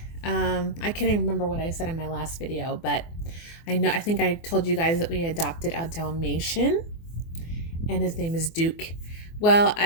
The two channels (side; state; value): right; late; 24 ms